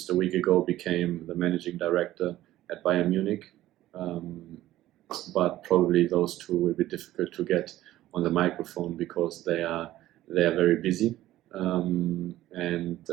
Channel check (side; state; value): left; quieter; 14.8 dB